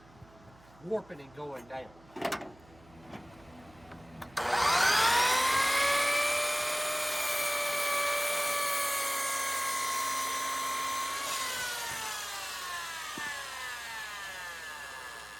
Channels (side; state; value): right; noise; hum, 25 dB below the sound